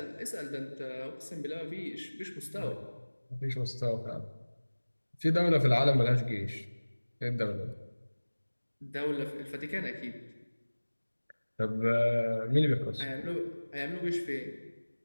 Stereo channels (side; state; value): both; inverted; correlation -1.00